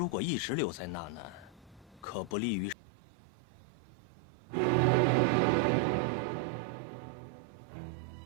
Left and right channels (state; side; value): drops out; left; at 2.8 s